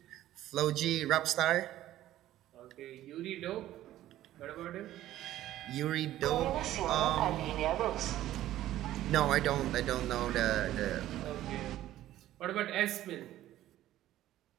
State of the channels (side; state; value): left; quieter; 13.8 dB